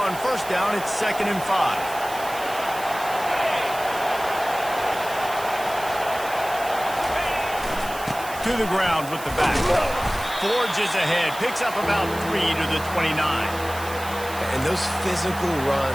first down, it's 2nd and 5. To the ground with the back. Forges ahead, picks up about 3 to the 29. And those physical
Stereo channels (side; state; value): right; noise; hiss, 14 dB below the sound